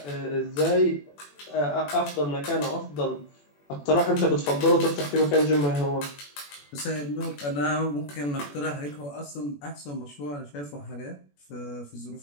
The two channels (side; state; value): right; late; 21 ms